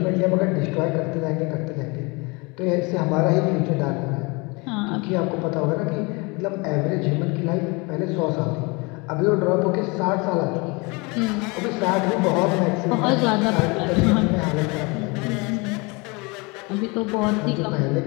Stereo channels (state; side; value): quieter; right; 27.7 dB